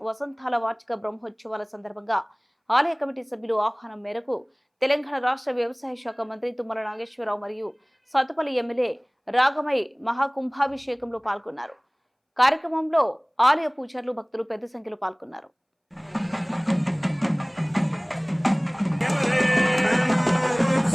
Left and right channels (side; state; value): both; identical; correlation 1.00